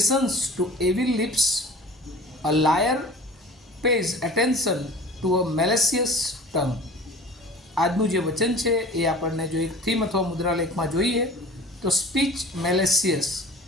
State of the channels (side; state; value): both; normal; correlation 0.42